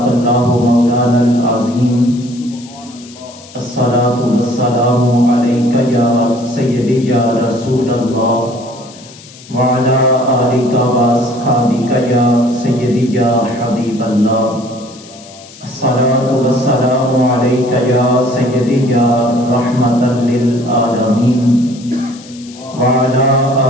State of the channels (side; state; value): left; noise; hiss, 21 dB below the sound